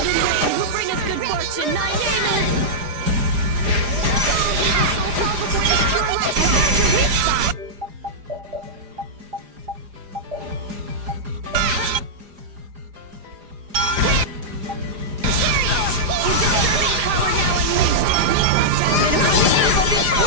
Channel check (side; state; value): left; late; 4.9 ms